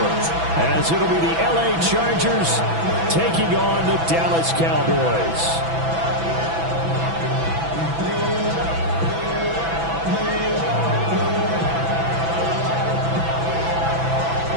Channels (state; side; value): late; left; 6.0 ms